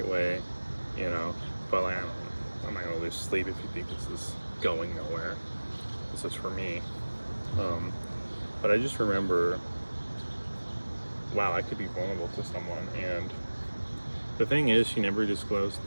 way, you know, but like, I don't know. I'm not gonna lose sleep if you think this is going nowhere. This is for me. But I just remember, wow, I could be vulnerable to someone. And the thing is, she never disclosed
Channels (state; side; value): inverted; both; correlation -1.00